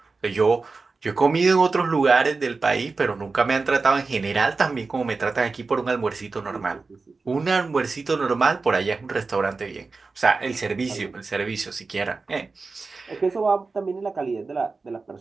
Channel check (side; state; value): left; quieter; 4.1 dB